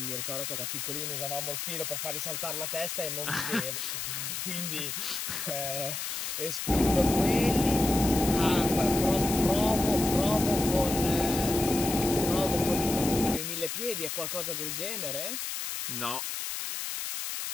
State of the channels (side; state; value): left; noise; hiss, 4 dB below the sound